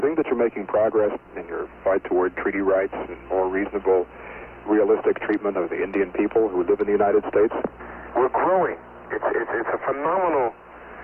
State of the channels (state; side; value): identical; both; correlation 1.00